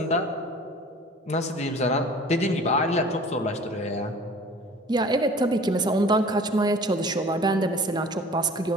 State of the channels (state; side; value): normal; both; correlation 0.45